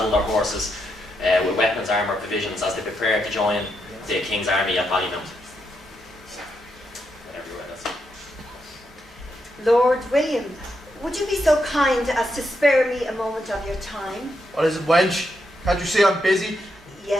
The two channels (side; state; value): both; normal; correlation 0.82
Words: their horses with weapons, armour, provisions as they prepared to join the King's army at Ballymount. Lord William, would you be so kind as to spare me a moment of your time? What is it, wench? Can't you see I'm busy?